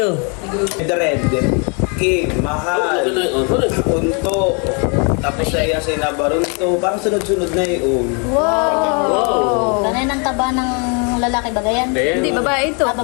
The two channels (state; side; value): quieter; right; 35.8 dB